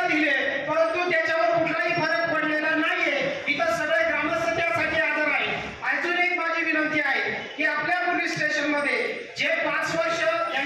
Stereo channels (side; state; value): both; identical; correlation 1.00